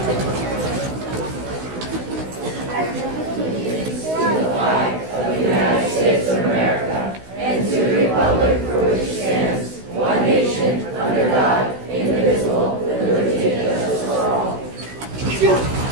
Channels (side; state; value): left; late; 16 ms